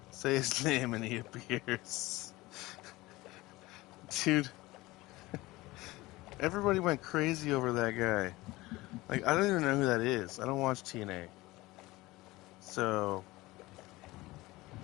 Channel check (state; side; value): quieter; right; 19.9 dB